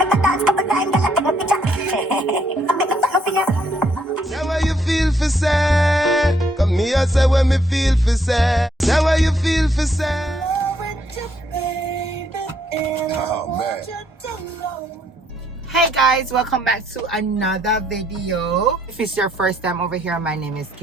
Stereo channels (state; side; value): normal; both; correlation 0.71